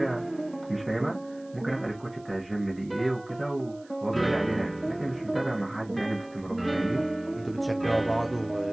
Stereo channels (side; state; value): right; noise; hiss, 28 dB below the sound